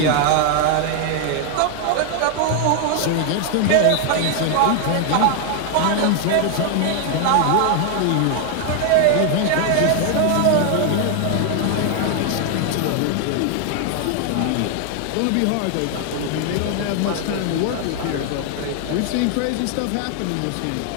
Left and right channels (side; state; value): both; different; correlation 0.00